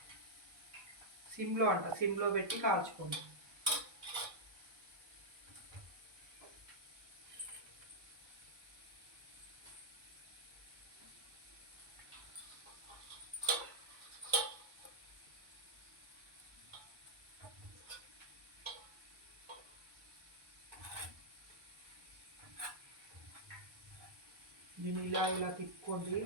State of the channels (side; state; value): left; late; 1.1 ms